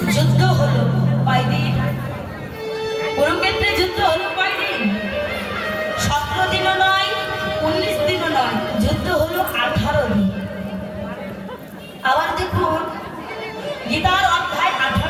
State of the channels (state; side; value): identical; both; correlation 1.00